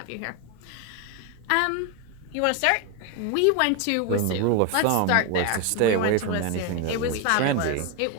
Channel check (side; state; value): both; different; correlation 0.01